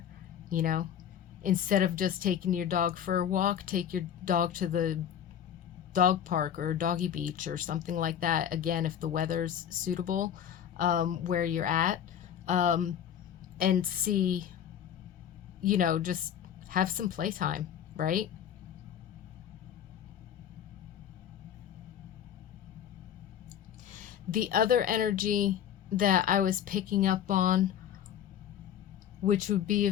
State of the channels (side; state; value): right; quieter; 9.5 dB